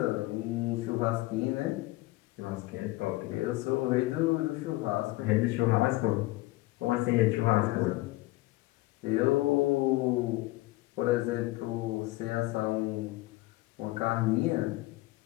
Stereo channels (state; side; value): quieter; right; 19.6 dB